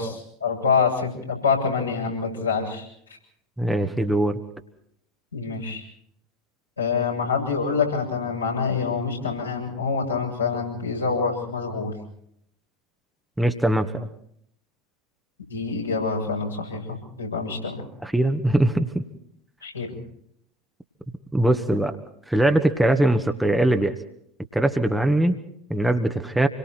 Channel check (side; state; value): both; normal; correlation 0.41